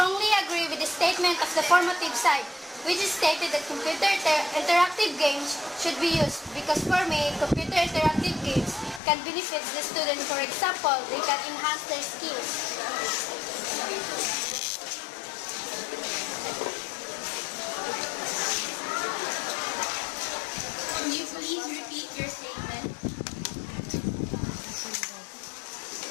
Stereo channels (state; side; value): drops out; right; at 9.0 s